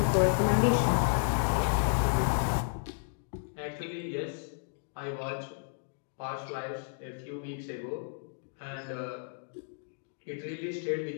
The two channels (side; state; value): right; silent; digital silence